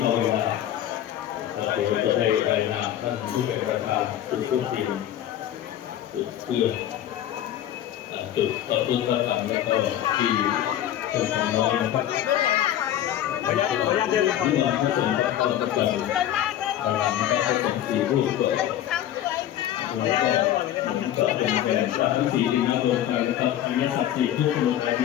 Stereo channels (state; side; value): quieter; right; 11.7 dB